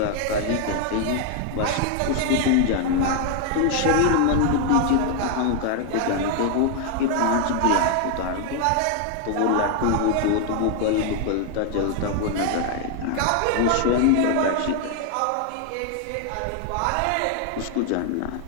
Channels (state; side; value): different; both; correlation 0.00